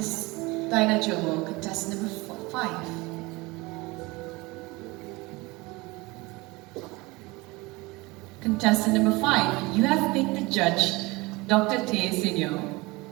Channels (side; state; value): left; quieter; 23.1 dB